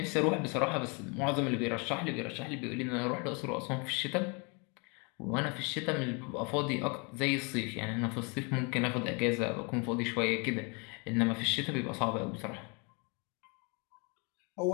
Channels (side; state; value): right; quieter; 32.0 dB